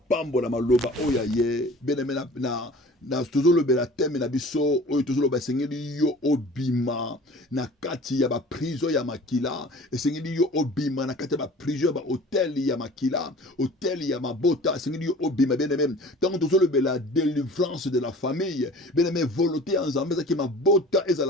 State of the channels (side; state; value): both; normal; correlation 0.44